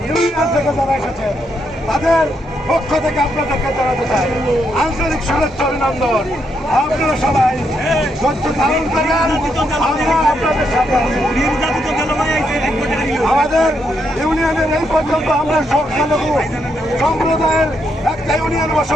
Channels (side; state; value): both; normal; correlation 0.78